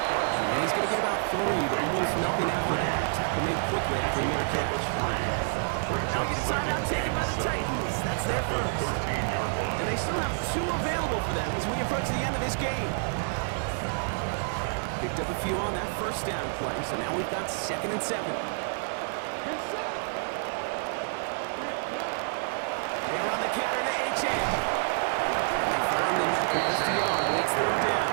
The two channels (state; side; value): silent; left; 59 dB below the other